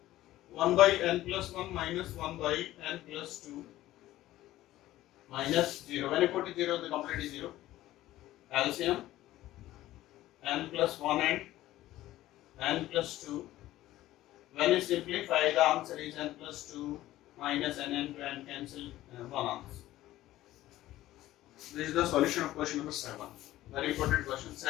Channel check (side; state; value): right; quieter; 15.2 dB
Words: 1 by n plus 1 minus 1 by n plus 2 minus 0. When you put it 0, the complete is 0. LCM n plus 1 and n plus 2. When you simplify, the answer is n plus 2 minus n to n, cancel 1 answer. This is the solution of question number 7. Very important question.